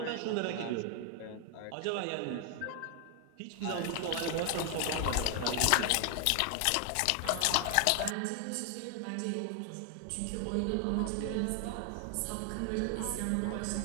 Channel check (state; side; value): different; both; correlation 0.00